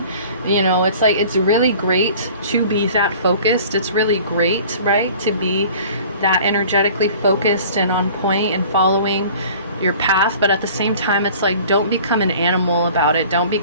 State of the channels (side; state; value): both; inverted; correlation -0.47